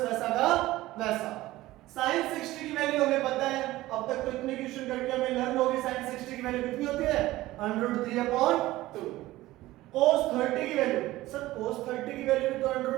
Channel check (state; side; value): quieter; left; 17.1 dB